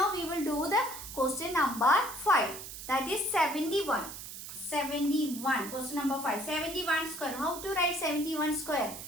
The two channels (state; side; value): noise; right; hiss, 10 dB below the sound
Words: we will do the question number 5. That is 71. 71. Question number 5. 71 square. How to write 71 square?